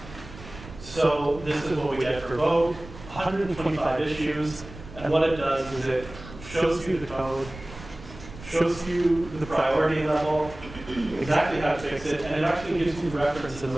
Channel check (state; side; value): noise; right; rumble, 15 dB below the sound